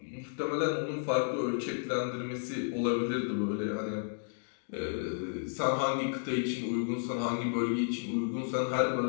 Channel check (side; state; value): right; silent; digital silence